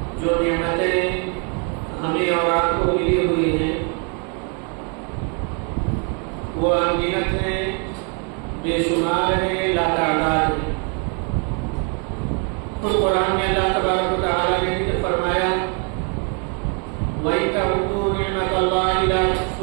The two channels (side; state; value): left; quieter; 36.0 dB